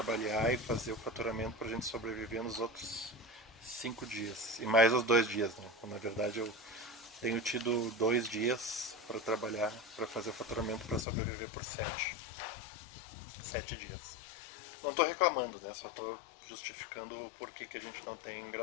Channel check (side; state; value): right; drops out; at 11.1 s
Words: e fazer o faturamento para a gente sobreviver nos outros 5 dias. E mais os 2 dias, né? Na verdade, eu tenho tido 2 dias para trabalhar, para fazer o faturamento para sobreviver por 7 dias. Não estou reclamando, né? Só estou justificando o porquê que a gente não tem